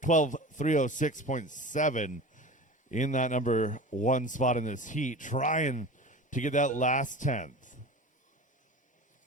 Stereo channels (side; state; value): both; normal; correlation 0.34